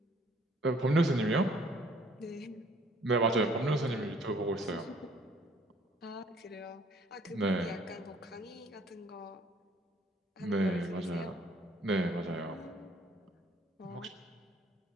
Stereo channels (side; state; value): both; normal; correlation 0.60